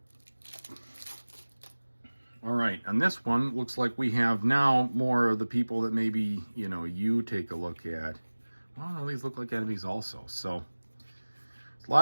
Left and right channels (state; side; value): inverted; both; correlation -1.00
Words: right, on this one, looks like we have now more of the people that maybe, you know, you take a look at. Well, no, these look like enemies also. So